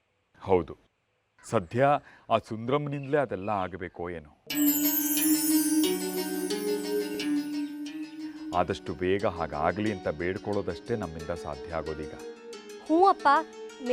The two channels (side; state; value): both; identical; correlation 1.00